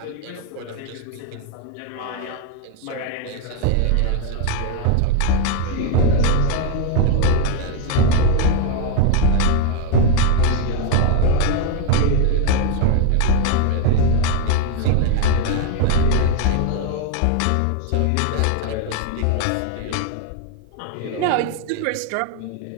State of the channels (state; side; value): different; both; correlation 0.01